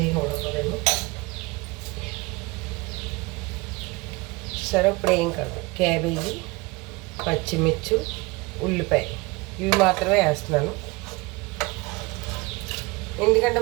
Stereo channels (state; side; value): quieter; left; 24.6 dB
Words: ఉడకలేను. సరే, ఇప్పుడు ఏం కాదు, క్యాబేజీ, పచ్చిమిర్చి, ఉల్లిపాయ ఇవి మాత్రమే వేస్తున్నాను. ఎందుకంటే